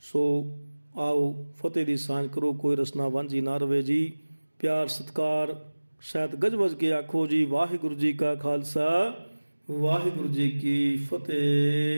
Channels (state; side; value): inverted; both; correlation -1.00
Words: ਸੋ ਆਓ ਫਤਿਹ ਦੀ ਸਾਂਝ ਕਰੋ, ਕੋਈ ਰਸਨਾ ਵਾਂਝੀ ਨਾ ਰਵੇ ਜੀ। ਪਿਆਰ ਸਤਿਕਾਰ ਸਹਿਤ ਗੱਜ ਵੱਜ ਕੇ ਆਖੋ ਜੀ, ਵਾਹਿਗੁਰੂ ਜੀ ਕਾ ਖਾਲਸਾ, ਵਾਹਿਗੁਰੂ ਜੀ ਕੀ